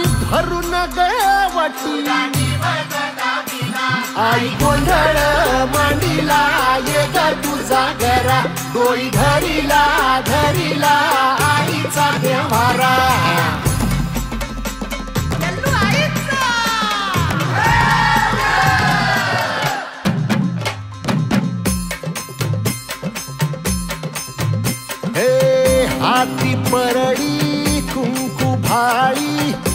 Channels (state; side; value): identical; both; correlation 1.00